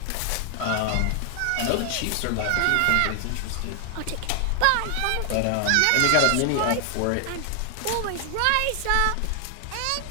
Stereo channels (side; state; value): both; different; correlation 0.00